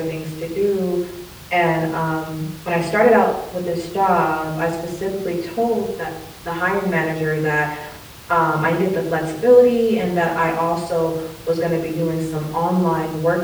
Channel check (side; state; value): both; identical; correlation 1.00